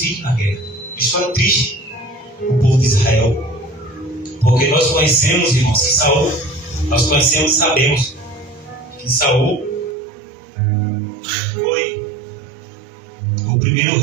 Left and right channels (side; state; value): left; drops out; at 10.0 s